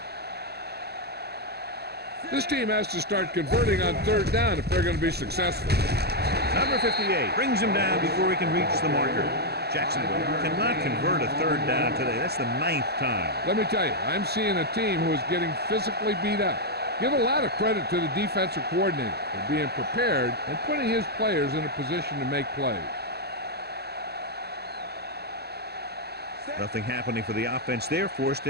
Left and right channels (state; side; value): late; left; 0.47 ms